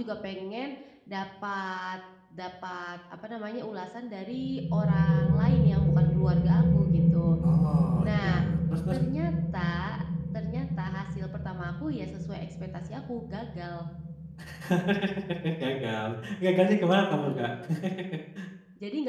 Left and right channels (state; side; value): identical; both; correlation 1.00